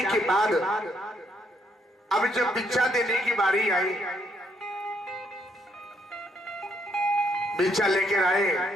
के बाद अब जब भिक्षा देने की बारी आई, भिक्षा लेकर आए,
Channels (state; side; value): normal; both; correlation 0.73